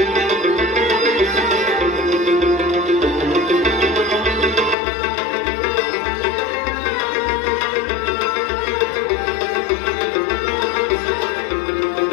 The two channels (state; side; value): drops out; right; at 4.8 s